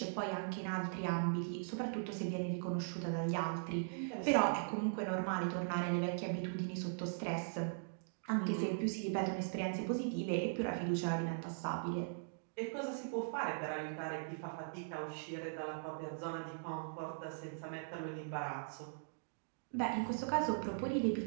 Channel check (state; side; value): silent; left; digital silence